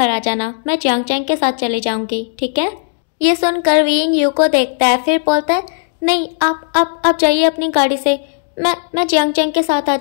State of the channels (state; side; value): silent; right; digital silence